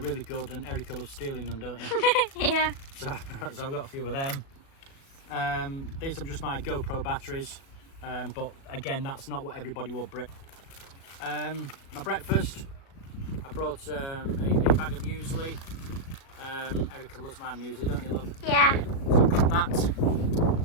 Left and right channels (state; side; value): late; right; 36 ms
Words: really good, and Erica loves stealing them, don't you? Yeah. So I've got a few of them. These are just my GoPro batteries, but again, that's not what everybody will bring. My breakfast, I brought a bag of muesli. Erica loves my muesli, don't you, love? Yeah. So I've got that.